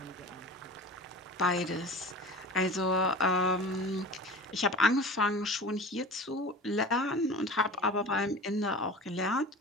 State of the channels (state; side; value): normal; both; correlation 0.36